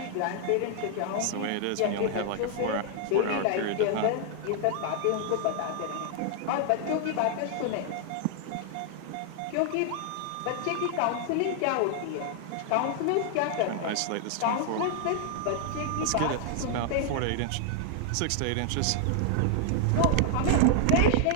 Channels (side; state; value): both; different; correlation 0.00